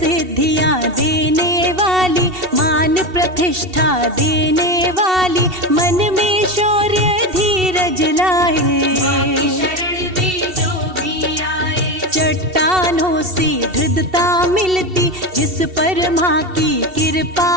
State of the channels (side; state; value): left; late; 2.7 ms